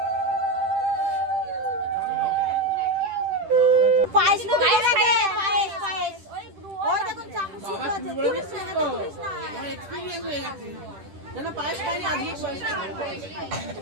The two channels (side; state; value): left; late; 10 ms